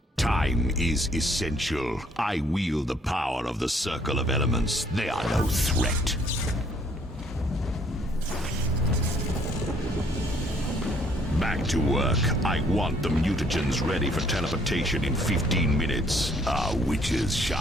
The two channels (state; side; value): normal; both; correlation 0.64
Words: Time is essential. I wield the power of the Circle of Elements. They are no threat. Back to work. I want the mutagens ready for teleportation in 15 minutes. Our witches